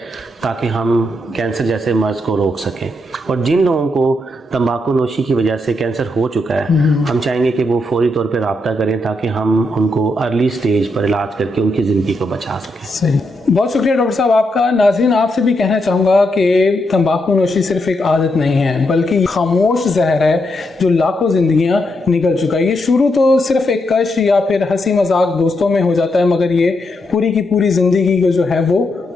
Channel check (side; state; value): both; normal; correlation 0.81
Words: ताकि हम कैंसर जैसे मर्ज़ को रोक सकें। और जिन लोगों को तंबाकू नोशी की वजह से कैंसर हो चुका है, हम चाहेंगे कि वो फौरी तौर पर रब्ता करें ताकि हम उनको अर्ली स्टेज पर इलाज करके उनकी ज़िंदगी को बचा सकें। सही, बहुत शुक्रिया डॉक्टर साहब आपका। नाज़रीन, आपसे भी कहना चाहूँगा कि तंबाकू नोशी सिर्फ एक आदत नहीं है, बल्कि खामोश जहर है जो लाखों ज़िंदगियाँ निकल चुका है। ये शुरू तो सिर्फ एक कश या फिर हंसी मजाक दोस्तों में हो जाता है, मगर ये पूरी की पूरी ज़िंदगी को जो है वो